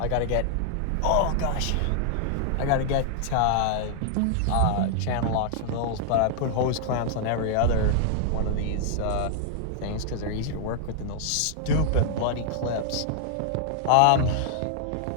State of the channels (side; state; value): both; different; correlation -0.01